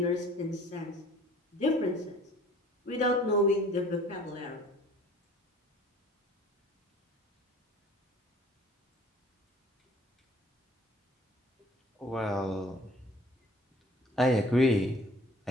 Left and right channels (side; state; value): both; normal; correlation 0.51